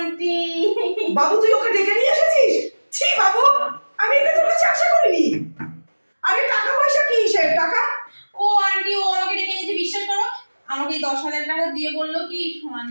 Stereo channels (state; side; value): inverted; both; correlation -1.00